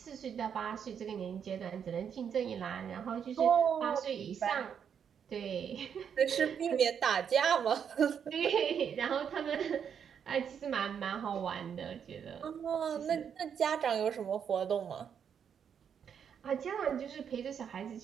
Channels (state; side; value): quieter; left; 7.8 dB